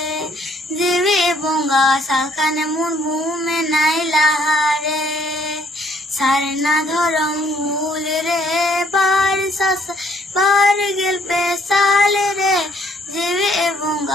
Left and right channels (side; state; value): both; normal; correlation 0.63